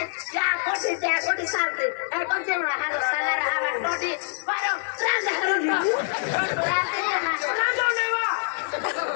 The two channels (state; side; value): silent; right; 62 dB below the other